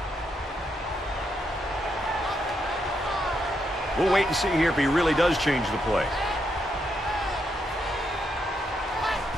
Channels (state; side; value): normal; both; correlation 0.80